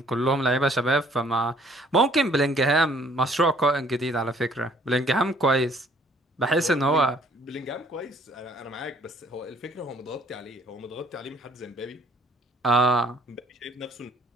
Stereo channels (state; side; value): normal; both; correlation 0.60